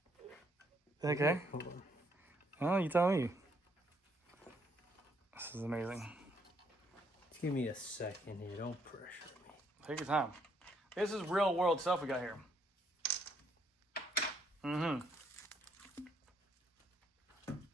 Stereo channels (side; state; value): both; normal; correlation 0.70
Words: Okay. Hold on. Oh, you tell me. This is amazing. Just give me a second here. Don't pressure me. Take your time. This is real world stuff we got here.